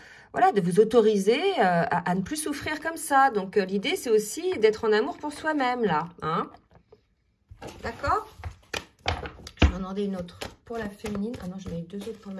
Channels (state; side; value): identical; both; correlation 1.00